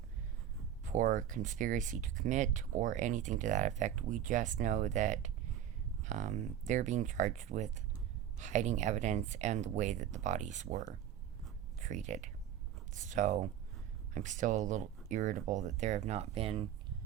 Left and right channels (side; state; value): left; quieter; 10.3 dB